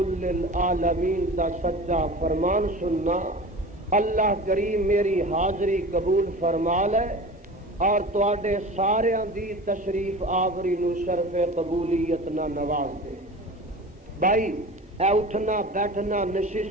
دا سچا فرمان سننا۔ اللہ کریم میری حاضری قبول فرما لے اور تواڈے ساریاں دی تشریف آوری نو شرف قبولیت نہ نواز دے۔ بھائی اے اٹھنا بیٹھنا،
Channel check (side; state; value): both; normal; correlation 0.35